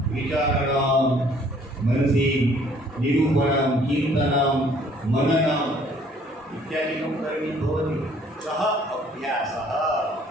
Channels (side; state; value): both; normal; correlation 0.59